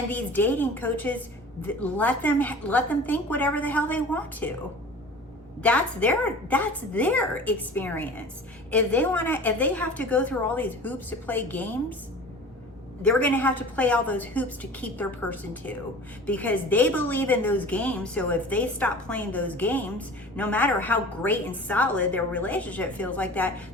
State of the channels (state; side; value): normal; both; correlation 0.40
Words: these dating coaches, let them think whatever the hell they want to. That's their experience. If they have to go through all these hoops to play games, they're going to have to play all those hoops to keep their person too, because they believe in those games. So if they stop playing those games, no matter how great and solid their relationship feels like that,